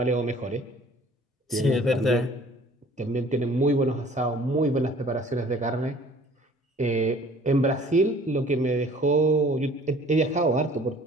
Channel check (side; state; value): both; normal; correlation 0.52